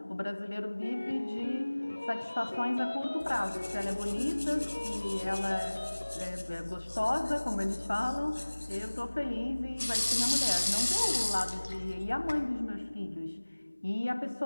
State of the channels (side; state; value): both; inverted; correlation -1.00